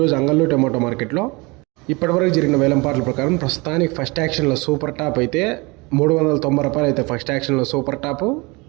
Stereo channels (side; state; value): left; quieter; 26.0 dB